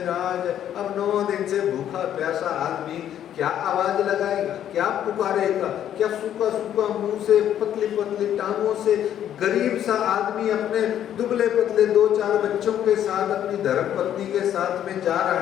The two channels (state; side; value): quieter; right; 10.6 dB